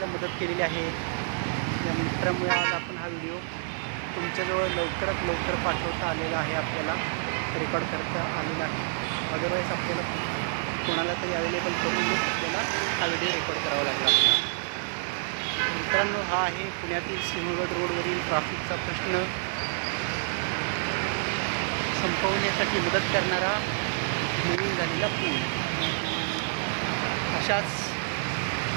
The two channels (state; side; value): silent; left; digital silence